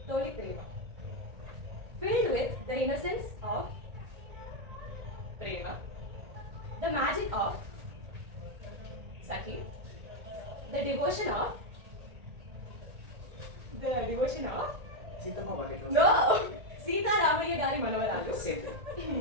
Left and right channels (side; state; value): left; late; 1.8 ms